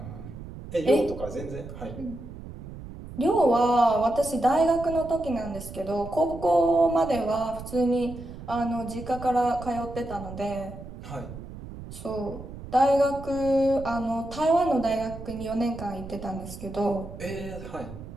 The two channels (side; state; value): right; noise; rumble, 12 dB below the sound